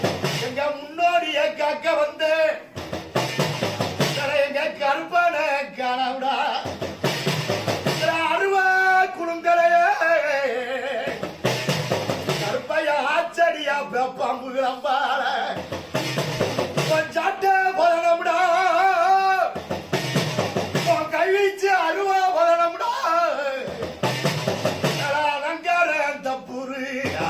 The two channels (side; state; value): both; identical; correlation 1.00